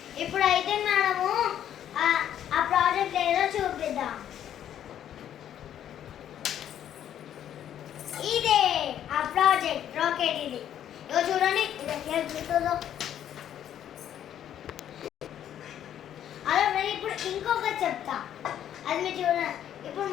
ఇప్పుడైతే మనము ఆ ప్రాజెక్ట్ ఏదో చూపిద్దాం. ఇదే ఆ ప్రాజెక్ట్ రాకెట్. ఇది ఇగో చూడండి, ఇది చూస్తుందో. అలా ఇప్పుడు ఇంకొకటి చెప్తా, అది మీరు చూడండి. ఇప్పుడు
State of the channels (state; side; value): quieter; right; 10.4 dB